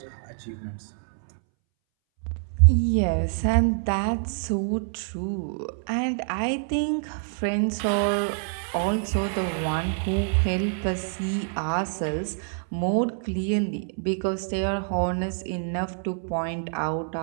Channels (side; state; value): left; silent; 61 dB below the other